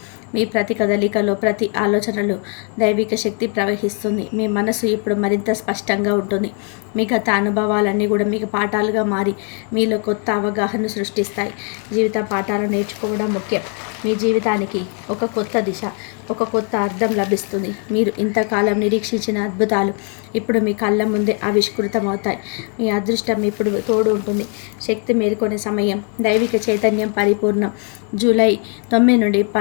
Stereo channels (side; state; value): right; quieter; 40.0 dB